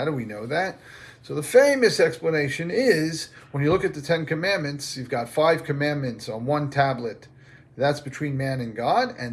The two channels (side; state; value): both; identical; correlation 1.00